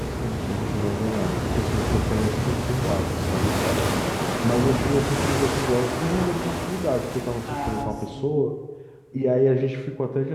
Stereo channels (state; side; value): identical; both; correlation 1.00